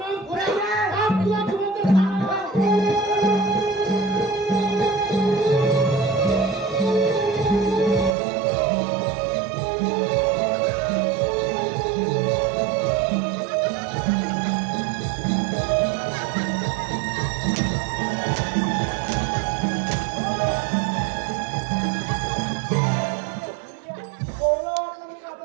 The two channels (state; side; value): drops out; left; at 8.1 s